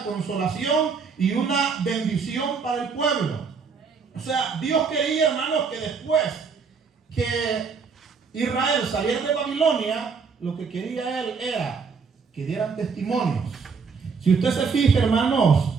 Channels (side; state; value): left; quieter; 5.4 dB